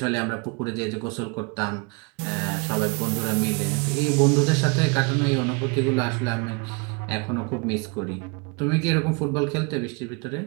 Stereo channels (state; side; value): quieter; left; 31.0 dB